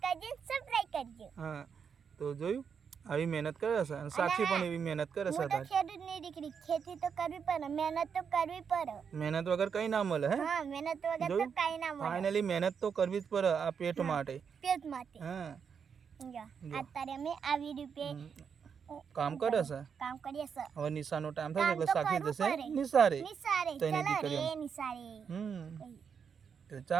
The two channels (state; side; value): quieter; left; 6.7 dB